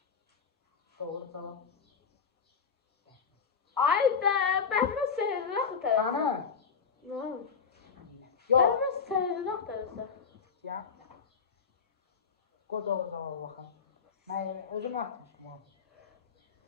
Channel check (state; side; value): quieter; right; 6.0 dB